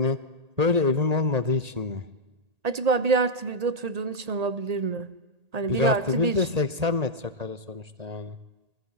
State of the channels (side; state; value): left; late; 1.8 ms